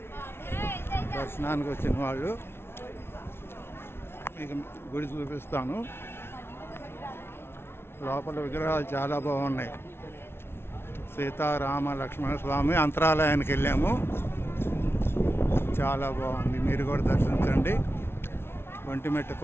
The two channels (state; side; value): late; right; 0.12 ms